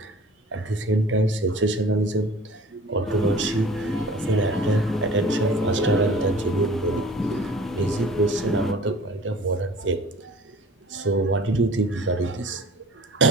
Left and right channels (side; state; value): both; normal; correlation 0.45